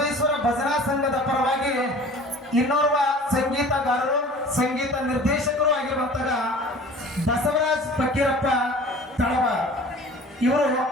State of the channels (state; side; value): normal; both; correlation 0.44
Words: ಭಜನಾ ಸಂಘದ ಪರವಾಗಿ ಇನ್ನೋರ್ವ ಸಂಗೀತಗಾರರು, ಸಂಗೀತ ನಿರ್ದೇಶಕರು ಆಗಿರುವಂತಹ ಬಸವರಾಜ್ ಫಕೀರಪ್ಪ ತಳವಾರ್ ಇವರು